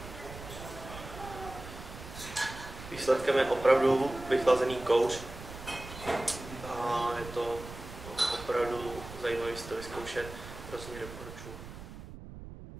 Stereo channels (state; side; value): noise; right; rumble, 13 dB below the sound